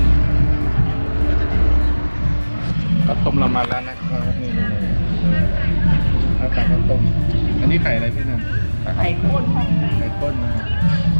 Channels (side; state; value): both; inverted; correlation -1.00